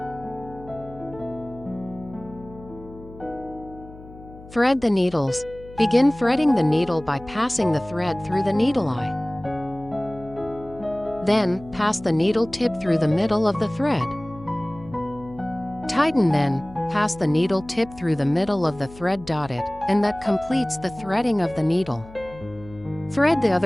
Thread the needles. Begin threading the needle by passing the thread through the needle eye. Then, pass the needle tip through the middle of the thread. Tighten, then, pass the needle tip through the middle of the thread dotted, and that completes the threading of the needle. Thread the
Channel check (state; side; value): noise; left; hum, 18 dB below the sound